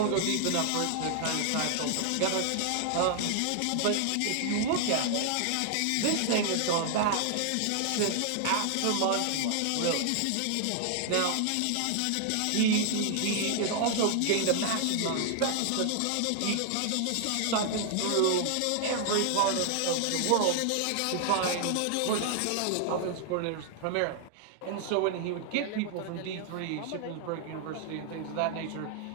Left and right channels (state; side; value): different; both; correlation 0.00